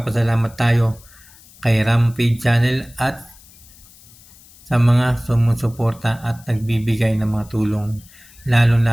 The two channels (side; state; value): left; noise; hiss, 24 dB below the sound